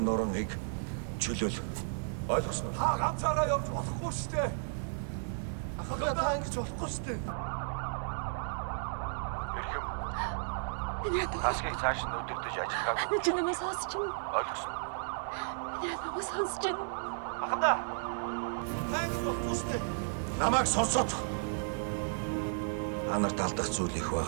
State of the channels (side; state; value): left; silent; 55 dB below the other